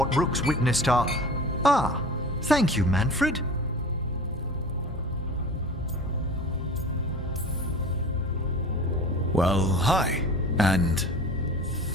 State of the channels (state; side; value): normal; both; correlation 0.38